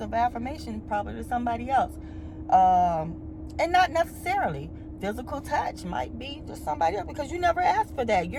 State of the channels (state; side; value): identical; both; correlation 1.00